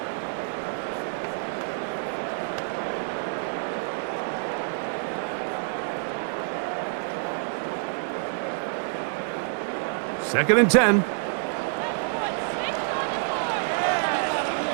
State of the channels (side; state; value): left; silent; digital silence